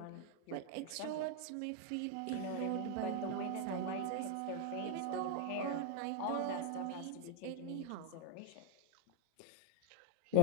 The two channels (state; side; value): different; both; correlation 0.01